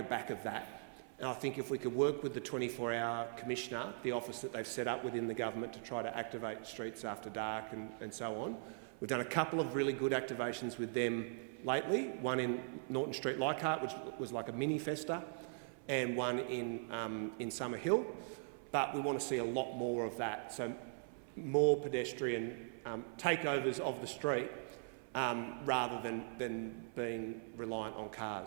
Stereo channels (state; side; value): silent; left; 51 dB below the other